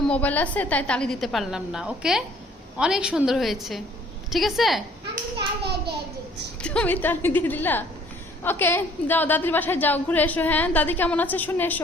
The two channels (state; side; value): normal; both; correlation 0.57